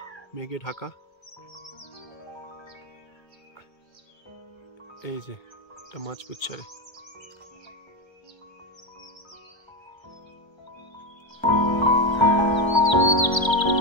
মেঘে ঢাকা। এই যে এটা মাছপুচ্ছারে।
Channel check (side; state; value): right; late; 1.3 ms